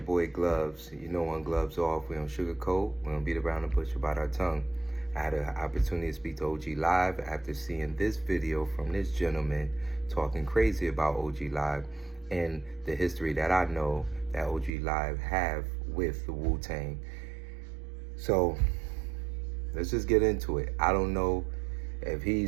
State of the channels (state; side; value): drops out; left; at 14.7 s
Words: Gloves. You know, on Gloves Off, we don't sugarcoat, we don't beat around the bush about our tongue. I had an opportunity to speak to OG Live after seeing this video from this gentleman talking crazy about OG Live and the history that I know that OG Live have with the Wu-Tang. So let's just get into it. I don't know if